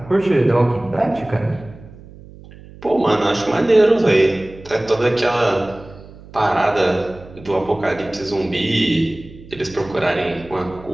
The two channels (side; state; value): right; noise; hum, 19 dB below the sound